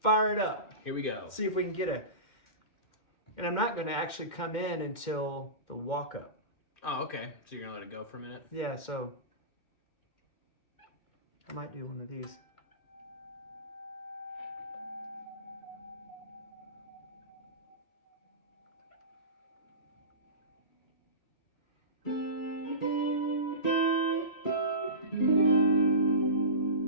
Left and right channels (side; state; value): right; late; 2.2 ms